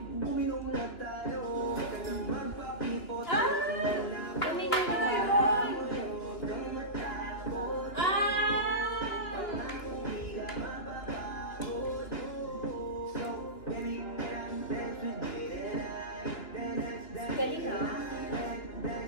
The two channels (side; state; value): right; late; 2.9 ms